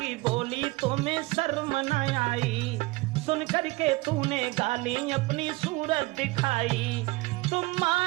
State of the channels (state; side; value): quieter; left; 22.4 dB